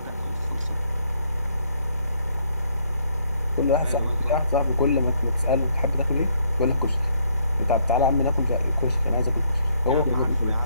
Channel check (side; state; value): both; inverted; correlation -0.69